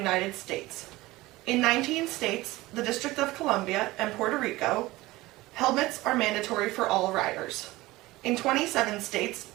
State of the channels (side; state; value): left; quieter; 19.2 dB